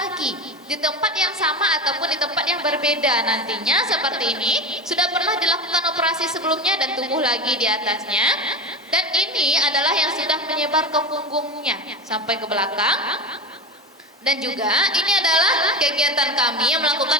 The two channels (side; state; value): both; normal; correlation 0.22